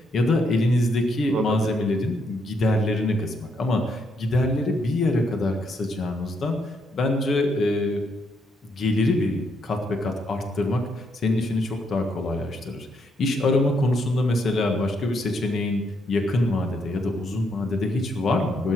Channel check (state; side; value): normal; both; correlation 0.76